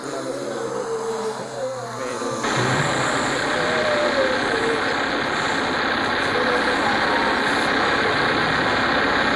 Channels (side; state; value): both; identical; correlation 1.00